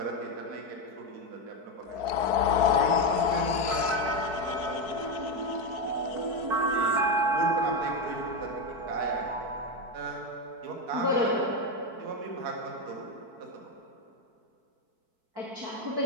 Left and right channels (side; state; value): left; late; 4.6 ms